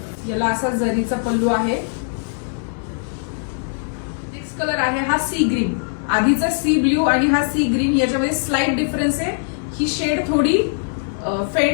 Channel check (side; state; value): right; silent; digital silence